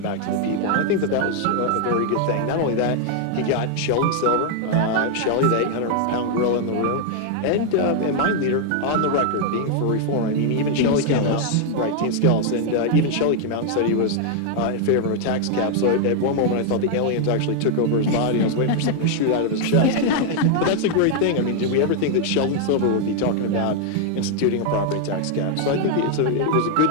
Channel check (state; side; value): different; both; correlation 0.00